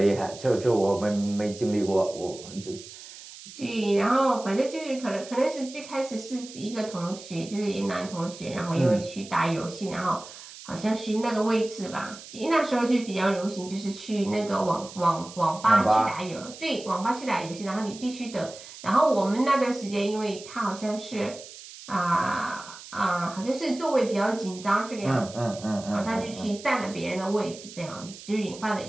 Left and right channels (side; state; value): right; noise; hiss, 16 dB below the sound